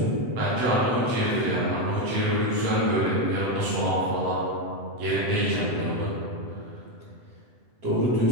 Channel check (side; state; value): left; late; 8.0 ms